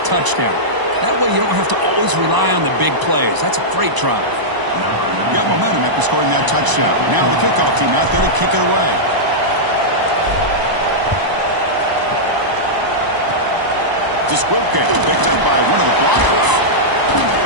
touchdown. That way you don't have to always rely on the big plays. That's a great drive. You got momentum after scoring that touchdown. Now the kickoff team out there to kick it away. The squib kick picked up by one of the blockers.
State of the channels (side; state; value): left; late; 1.0 ms